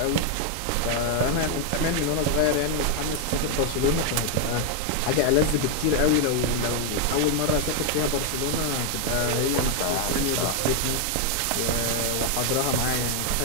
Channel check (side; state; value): both; different; correlation 0.00